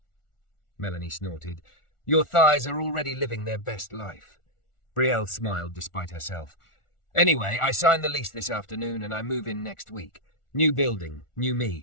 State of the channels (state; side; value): late; right; 1.4 ms